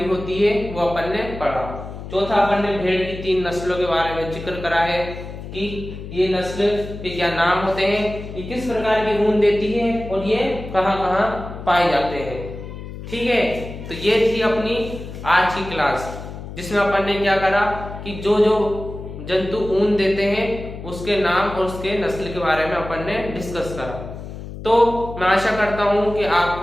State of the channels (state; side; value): noise; left; hum, 11 dB below the sound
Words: होती है वो अपन ने पढ़ा। चौथा अपन ने भेड़ की 3 नस्लों के बारे में जिक्र करा है कि ये नस्ल के क्या नाम होते हैं, ये किस प्रकार की ऊन देती है और ये कहाँ कहाँ पाए जाते हैं, ठीक है। तो ये थी अपनी आज की क्लास जिसमें अपन ने क्या करा कि जो जो जंतु ऊन देते हैं उसके नाम और उसके नस्ल के बारे में अपन ने डिस्कस करा। तो मैं आशा करता हूं कि